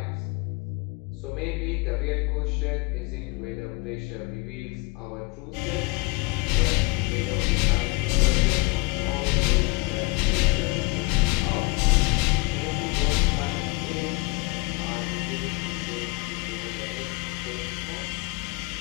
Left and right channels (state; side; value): quieter; right; 27.2 dB